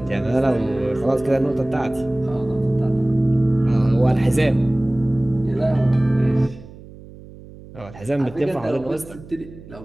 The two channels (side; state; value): right; noise; hum, 18 dB below the sound